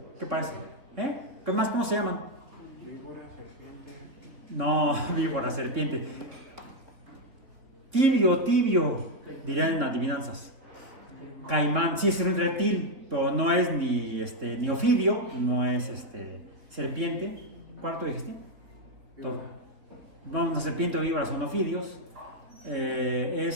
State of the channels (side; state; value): left; late; 3.9 ms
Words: ¿Qué parece? ¿Qué más? ¿Cómo se llaman? No, víbora, serpiente. Tibio, dirían en adivinanzas. Caimán, sí es un reptil, pero no es ni ofidio, no es serpiente. ¿Cuál tú dijiste? No, una serpiente o víbora son ofidios.